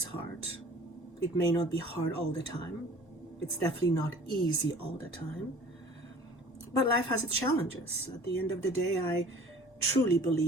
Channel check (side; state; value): both; normal; correlation 0.48